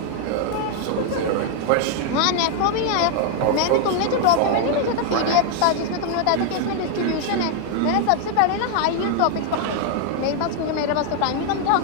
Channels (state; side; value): different; both; correlation 0.00